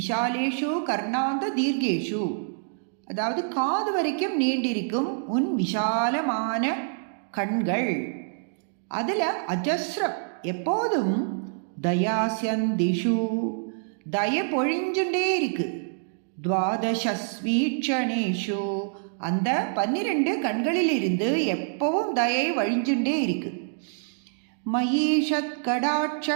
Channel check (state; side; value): silent; left; digital silence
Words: கர்ணாந்த தீர்கேஷு, அதாவது காது வரைக்கும் நீண்டிருக்கும் உன் விஷாலமான கண்கள். அதில் அஜஸ்ரம், எப்போதும் தயாஸ்யந்திஷு, தய பொழிஞ்சுட்டே இருக்கு. துவாதசஸ்வீட்சணேஷு, அந்த 12 கண்களில் இருந்து எப்பவும் தயை வழிஞ்சுட்டே இருக்கு. மயீஷத்